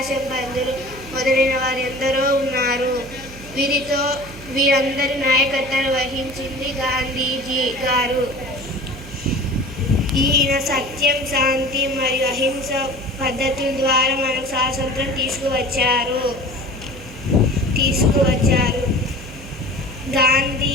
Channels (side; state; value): right; noise; hum, 16 dB below the sound